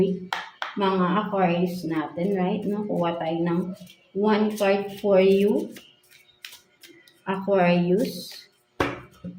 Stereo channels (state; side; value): identical; both; correlation 1.00